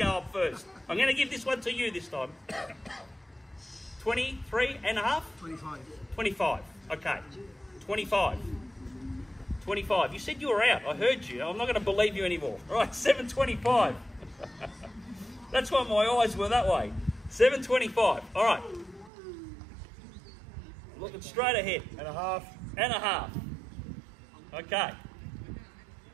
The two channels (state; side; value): drops out; left; at 19.1 s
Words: up first. I'm going to give this one to you this time. 23 and a half? 25. 25. Okay. 25. 25. You said you were out. I heard you. I'm not going to believe you anymore. All right, 725. That's why my eyes were that way. 725. All right. Looking straight ahead. And a half. And a half. Okay.